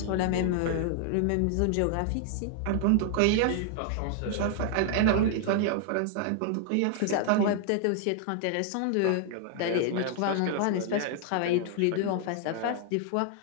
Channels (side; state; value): both; different; correlation 0.00